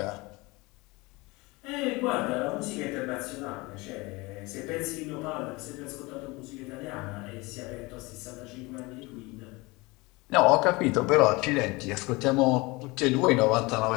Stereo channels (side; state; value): right; quieter; 23.9 dB